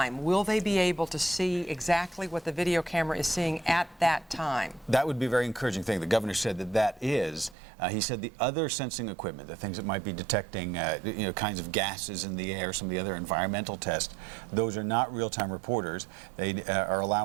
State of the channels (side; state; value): left; drops out; at 7.6 s